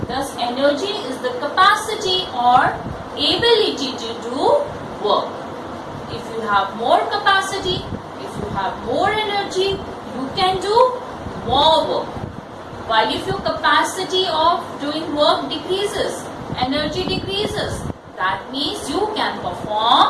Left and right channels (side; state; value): both; identical; correlation 1.00